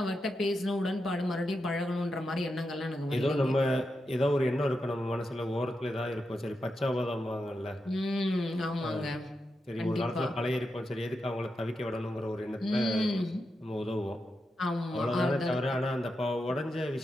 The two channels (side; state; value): both; normal; correlation 0.87